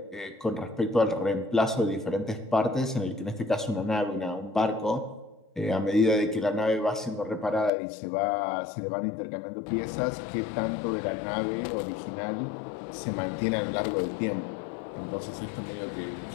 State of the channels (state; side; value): drops out; right; at 7.7 s